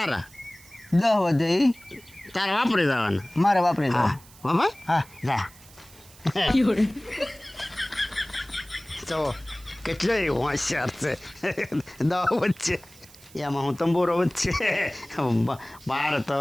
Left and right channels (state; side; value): noise; right; hiss, 23 dB below the sound